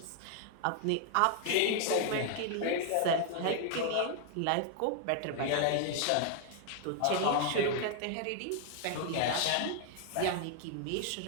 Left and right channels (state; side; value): different; both; correlation 0.00